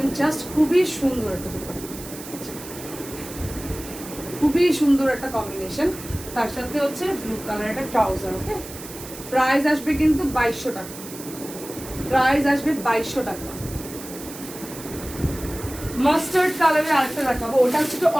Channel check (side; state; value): right; noise; hiss, 13 dB below the sound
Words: জাস্ট খুবই সুন্দর একটা দুপাট্টা, খুবই সুন্দর একটা কম্বিনেশন। তার সাথে হচ্ছে ব্লু কালার একটা ট্রাউজার, ওকে। প্রাইস আসবে কিন্তু 2200 টাকা, প্রাইস আসবে 2200 টাকা। মাস্টার্ড কালারের আরেকটা দেখাবো, ওটা হচ্ছে একটু